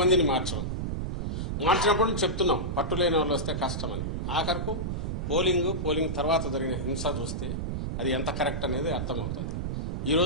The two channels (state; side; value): noise; right; rumble, 2 dB below the sound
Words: మార్చినప్పుడు చెప్తున్నాం, పట్టులేని వాళ్ళు వస్తే కష్టమని. ఆఖరకు పోలింగ్ తర్వాత జరిగిన హింస చూస్తే అది ఎంత కరెక్ట్ అనేది అర్థమవుతుంది.